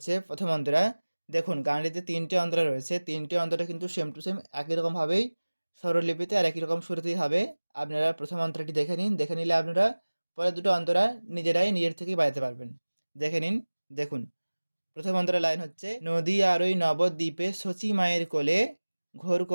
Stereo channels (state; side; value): inverted; both; correlation -1.00